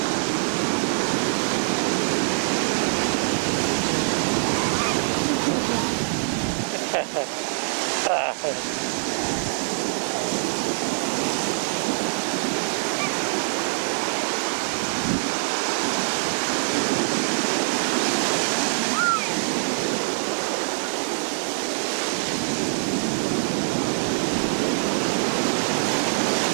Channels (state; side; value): silent; left; 62 dB below the other